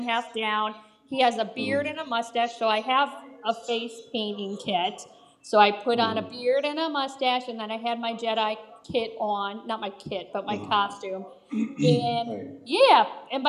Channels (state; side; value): identical; both; correlation 1.00